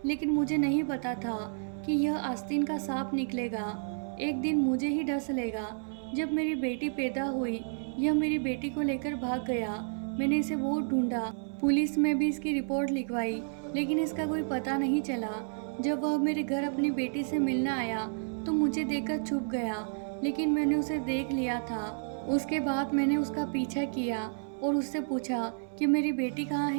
लेकिन मुझे नहीं पता था कि यह आस्तीन का सांप निकलेगा, एक दिन मुझे ही डस लेगा। जब मेरी बेटी पैदा हुई, यह मेरी बेटी को लेकर भाग गया। मैंने इसे बहुत ढूंढा, पुलिस में भी इसकी रिपोर्ट लिखवाई, लेकिन इसका कोई पता नहीं चला। जब वह मेरे घर अपनी बेटी से मिलने आया तो मुझे देखकर छुप गया, लेकिन मैंने उसे देख लिया था। उसके बाद मैंने उसका पीछा किया और उससे पूछा कि मेरी बेटी कहाँ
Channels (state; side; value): silent; left; 57 dB below the other